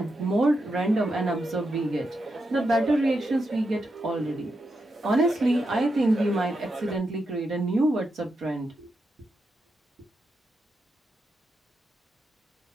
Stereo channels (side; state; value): both; normal; correlation 0.85